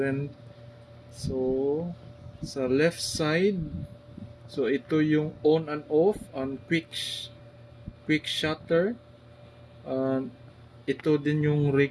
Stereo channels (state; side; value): identical; both; correlation 1.00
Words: So sa left side, so ito yung on and off and quick shutter. Ito din yung